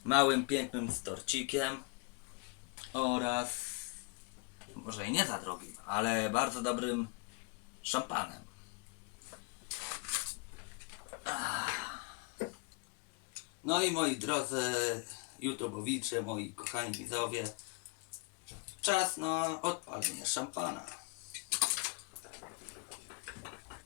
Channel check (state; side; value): quieter; right; 31.0 dB